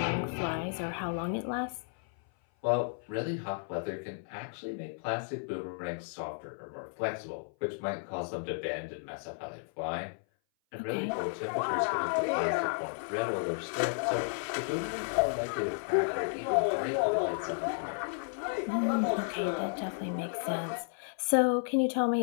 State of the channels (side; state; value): right; silent; 56 dB below the other